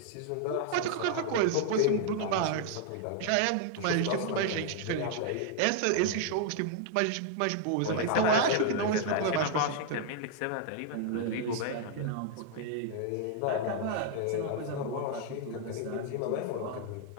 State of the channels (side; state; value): both; different; correlation 0.00